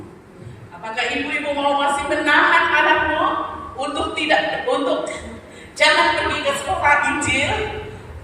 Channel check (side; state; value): both; identical; correlation 1.00